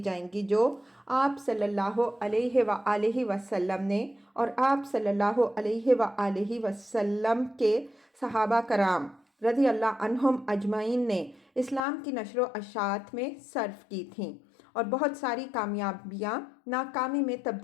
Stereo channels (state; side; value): drops out; right; at 11.8 s